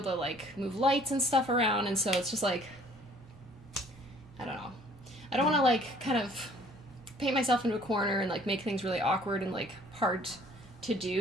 to, like, move lights and stuff around, and so it's just, like, I don't know. I don't want to, like, kind of paint myself into a corner and, like, make things really awkward and, like, hard to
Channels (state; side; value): normal; both; correlation 0.56